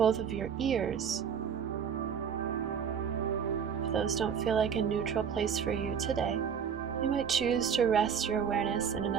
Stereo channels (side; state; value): left; quieter; 7.3 dB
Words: of your ears. If those don't feel like a neutral place for you today, you might choose to rest your awareness in